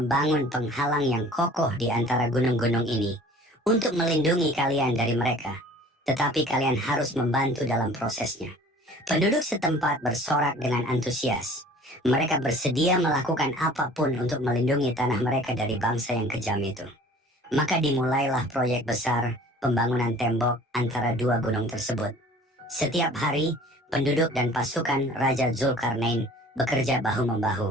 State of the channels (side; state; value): both; normal; correlation 0.48